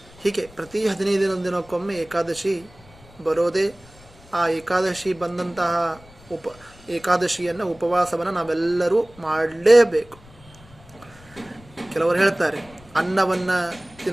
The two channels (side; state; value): left; noise; rumble, 24 dB below the sound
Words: ಹೀಗೆ ಪ್ರತಿ 15 ದಿನಕ್ಕೊಮ್ಮೆ ಏಕಾದಶಿ ಬರೋದೇ. ಆ ಏಕಾದಶಿ ಬಂದಂತಹ ಏಕಾದಶಿಯನ್ನು ಉಪವಾಸವನ್ನು ನಾವೆಲ್ಲರೂ ಮಾಡಲೇಬೇಕು. ಕೆಲವರು ಹೇಳ್ತಾರೆ ಅನ್ನವನ್ನು